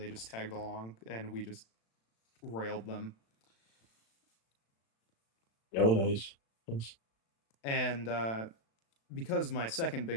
just tagged along and we just railed them. Oh, nice. Nice. And because my second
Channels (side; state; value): right; late; 36 ms